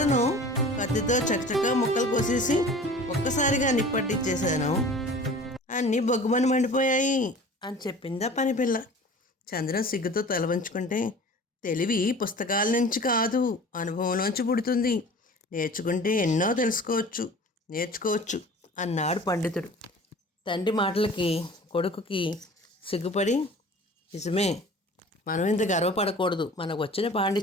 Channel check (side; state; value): both; normal; correlation 0.42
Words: కత్తితో చకచకా ముక్కలు కోసేసి ఒక్కసారిగా నిప్పట్టించేశాను, అన్నీ బొగ్గుమని మండిపోయాయి అని చెప్పిందా పనిపిల్ల. చంద్రం సిగ్గుతో తల వంచుకుంటే, తెలివి పుస్తకాల నుంచి కాదు అనుభవంలోంచి పుడుతుంది, నేర్చుకుంటే ఎన్నో నేర్చుకోవచ్చు అన్నాడు పండితుడు. తండ్రి మాటలకి కొడుకుకి సిగ్గుపడి, నిజమే, మనం ఇంత గర్వపడకూడదు, మనకు వచ్చిన